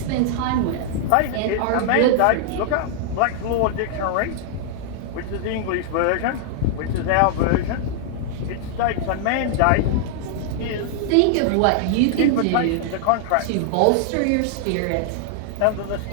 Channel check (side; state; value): both; different; correlation -0.01